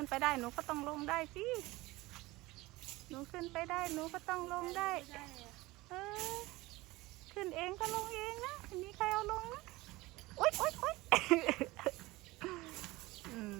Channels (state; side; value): quieter; left; 20.3 dB